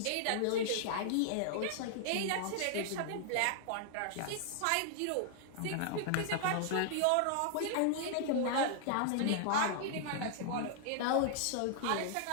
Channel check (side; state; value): both; different; correlation -0.01